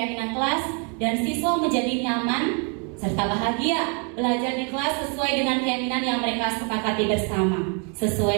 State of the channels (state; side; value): quieter; left; 37.7 dB